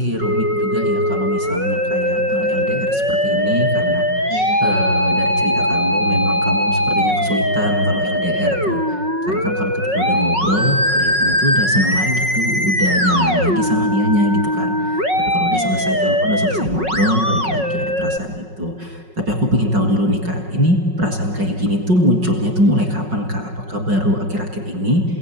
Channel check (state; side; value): late; left; 5.4 ms